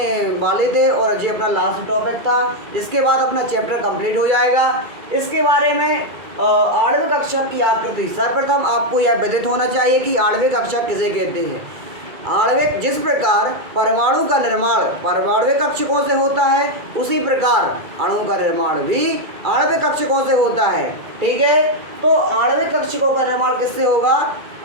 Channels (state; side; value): late; left; 2.3 ms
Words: वाले थे और ये अपना लास्ट टॉपिक था। इसके बाद अपना चैप्टर कंप्लीट हो जाएगा। इसके बारे में आणविक कक्षक की आकृति, सर्वप्रथम आपको यह विदित होना चाहिए कि आणविक कक्षक किसे कहते हैं। आणविक, जिस प्रकार परमाणु का निर्माण परमाणविक कक्षकों से होता है, उसी प्रकार अणु का निर्माण भी आणविक कक्षकों से होता है। ठीक है, तो आणविक कक्षकों का निर्माण किससे होगा?